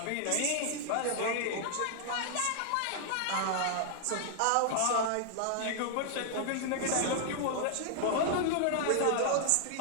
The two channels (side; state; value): both; different; correlation 0.00